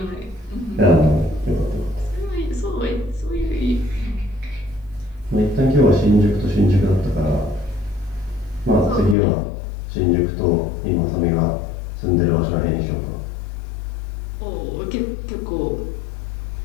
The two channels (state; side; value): drops out; right; at 9.2 s